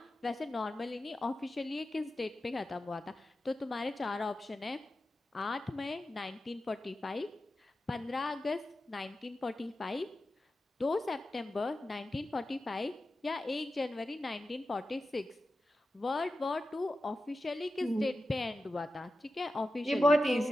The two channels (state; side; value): normal; both; correlation 0.92